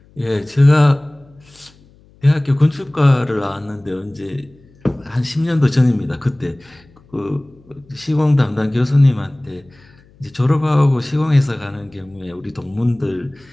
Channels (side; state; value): left; noise; hum, 29 dB below the sound